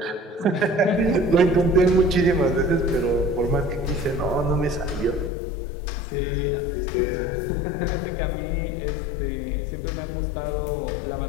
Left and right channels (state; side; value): drops out; right; at 5.3 s